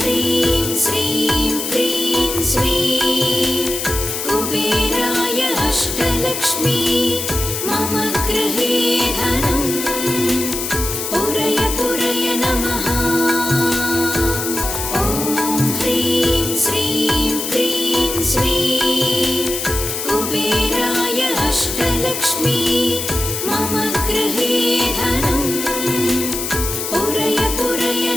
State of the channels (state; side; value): noise; left; hiss, 4 dB below the sound